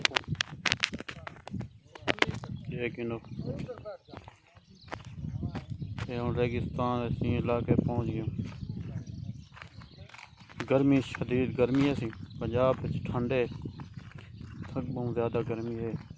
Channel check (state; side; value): identical; both; correlation 1.00